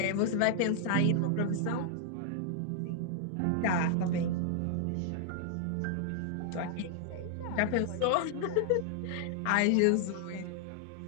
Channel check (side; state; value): both; different; correlation -0.01